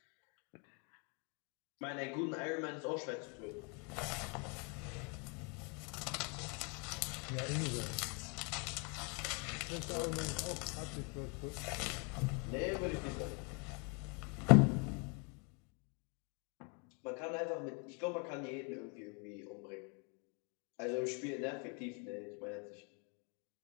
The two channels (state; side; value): quieter; right; 32.1 dB